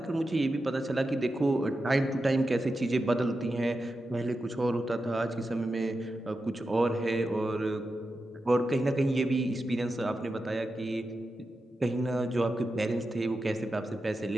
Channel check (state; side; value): normal; both; correlation 0.90